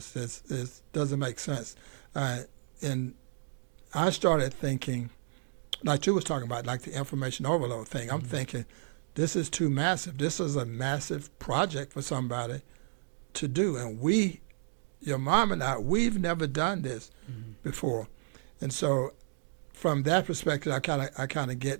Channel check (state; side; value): silent; left; digital silence